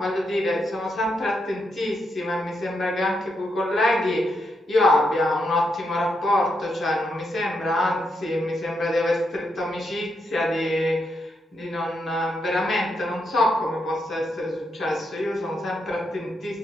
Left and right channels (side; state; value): both; normal; correlation 0.81